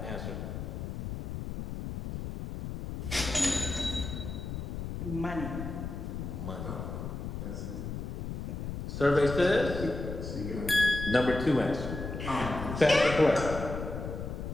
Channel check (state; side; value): noise; left; rumble, 6 dB below the sound